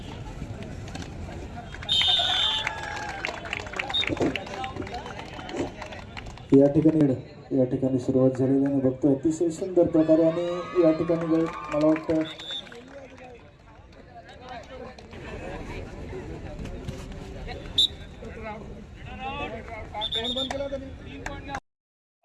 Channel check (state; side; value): identical; both; correlation 1.00